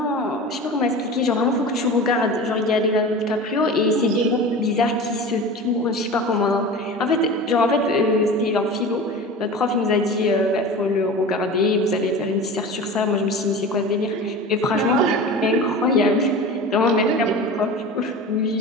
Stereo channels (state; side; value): normal; both; correlation 0.33